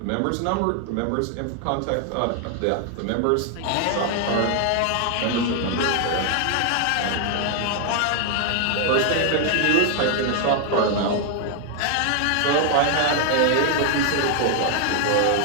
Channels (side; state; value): both; different; correlation 0.00